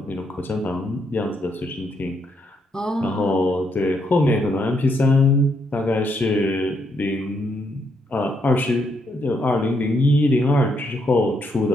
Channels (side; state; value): both; normal; correlation 0.76